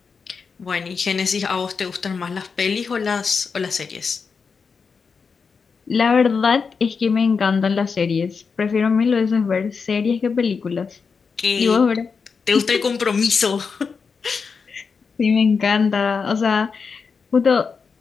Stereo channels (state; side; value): quieter; right; 5.4 dB